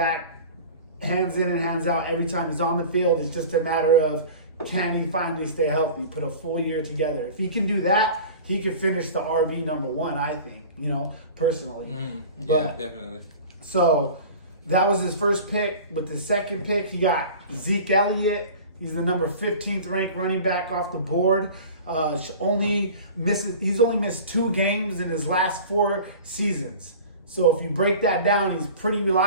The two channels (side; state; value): both; inverted; correlation -0.39